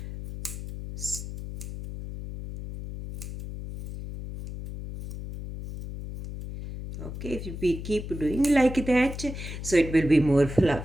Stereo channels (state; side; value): noise; left; hum, 9 dB below the sound